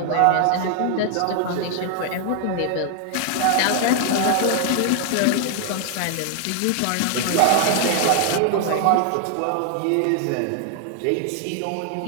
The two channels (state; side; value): different; both; correlation 0.00